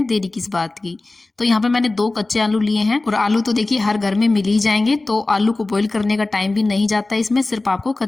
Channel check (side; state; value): right; quieter; 3.1 dB